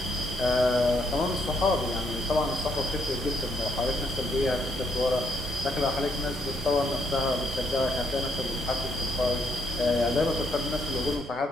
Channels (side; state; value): both; normal; correlation 0.72